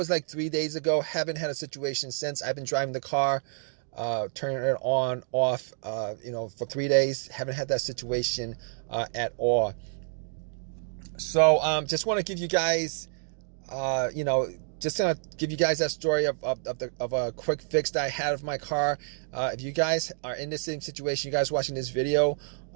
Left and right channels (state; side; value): silent; left; 59 dB below the other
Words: like 3 days ago. Haven't had a situation since. I've been driving the car, turning it on, off, for 3 days. Haven't had that situation at all. So just want to give you guys, just gonna give you guys that story of a quick fix that I had of my car. If you guys are in the same situation, you guys watching this video,